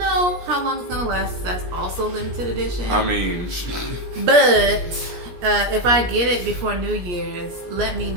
how long it's gonna last. That's also limited edition. I mean, but if I get it before New Year's, let me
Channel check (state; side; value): late; left; 17 ms